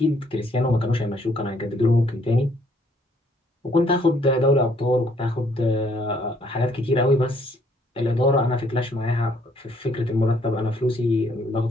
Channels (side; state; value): both; normal; correlation 0.66